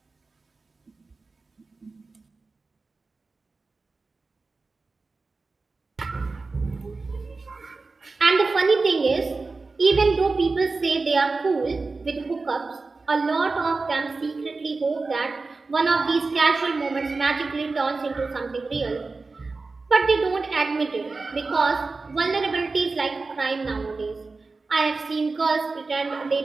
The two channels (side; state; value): left; quieter; 3.9 dB